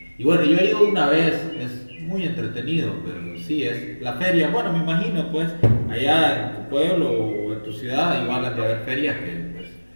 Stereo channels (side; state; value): both; inverted; correlation -1.00